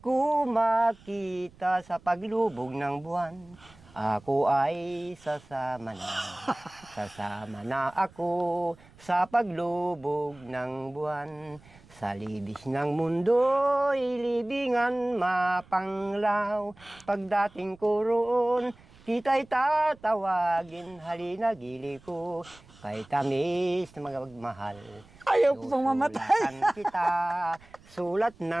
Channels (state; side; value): noise; right; rumble, 25 dB below the sound